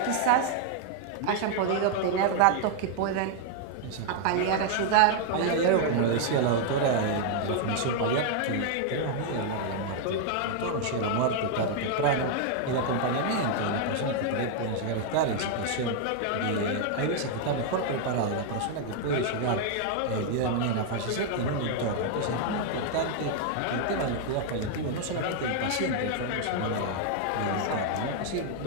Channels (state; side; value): different; both; correlation 0.00